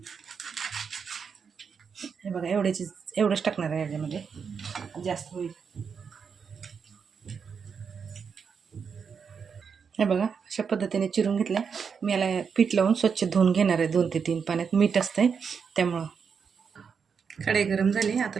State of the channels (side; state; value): left; quieter; 6.3 dB